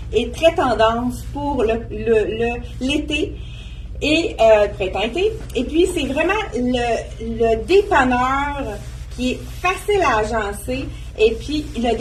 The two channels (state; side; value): identical; both; correlation 1.00